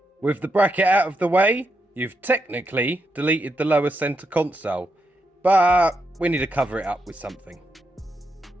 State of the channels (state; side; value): normal; both; correlation 0.83